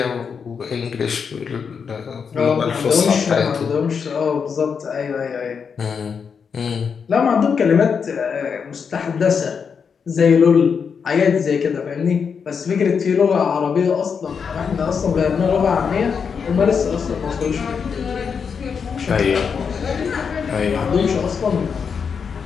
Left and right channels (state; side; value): quieter; right; 6.3 dB